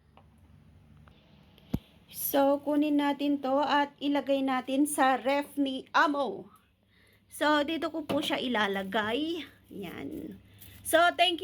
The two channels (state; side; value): identical; both; correlation 1.00